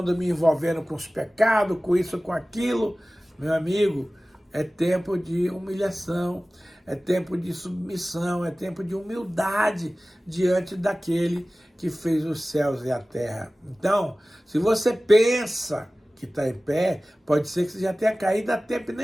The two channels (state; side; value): normal; both; correlation 0.97